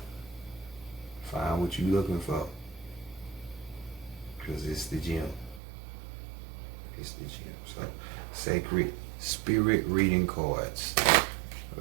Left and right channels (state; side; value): drops out; left; at 5.6 s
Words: find what you're looking for, because it's the gem. It's the gem. So, sacred spirit reading cards.